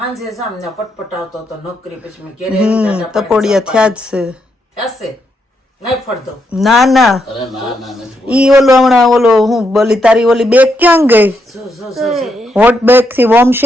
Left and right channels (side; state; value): both; normal; correlation 0.80